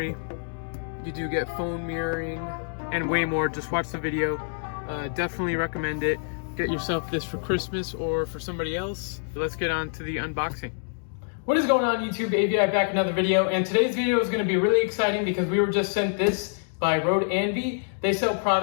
you do get phone mirroring and way more. Just watch the video. Definitely recommend it. Get yourself this for Christmas or for somebody else. Let's get on to the unboxing. What is going on YouTube? AVI Back Another video, and today's video is going to be really exciting because we were just sent this by ROADANVI. They sell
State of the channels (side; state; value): right; silent; digital silence